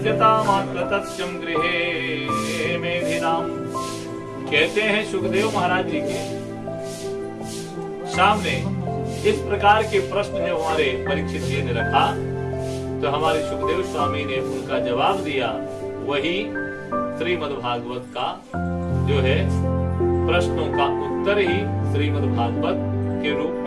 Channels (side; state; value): both; identical; correlation 1.00